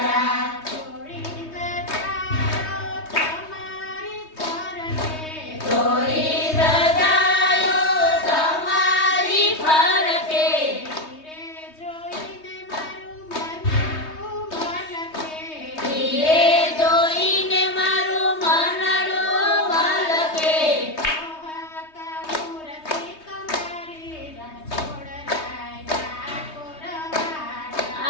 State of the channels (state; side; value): late; right; 3.2 ms